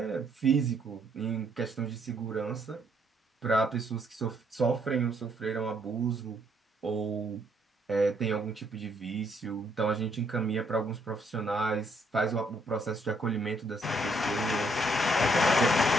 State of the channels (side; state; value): both; normal; correlation 0.70